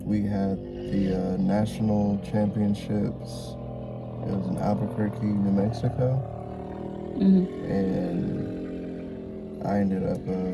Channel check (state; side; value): identical; both; correlation 1.00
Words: we had the national championships. It was in Albuquerque, New Mexico, and I ended up